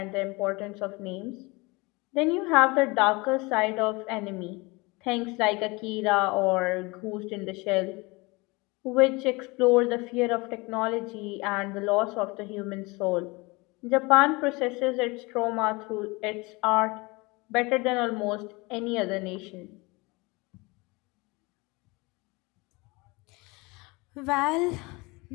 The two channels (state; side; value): quieter; right; 25.2 dB